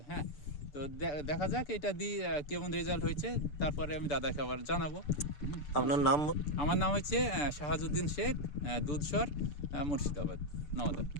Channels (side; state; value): right; late; 6.7 ms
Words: হ্যাঁ, তো দেখা যাক এটা দিয়ে কেমন রেজাল্ট হয়েছে, তারপরে আমি দাদাকে আবার জানাবো। আপনার নাম? আমার নাম হচ্ছে শাহাজুদ্দিন শেখ, দুধসর, মুর্শিদাবাদ, নওদা।